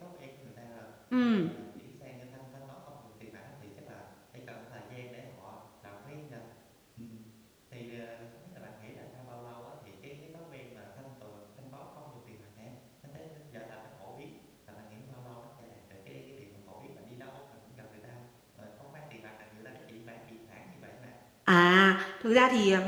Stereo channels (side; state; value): both; identical; correlation 1.00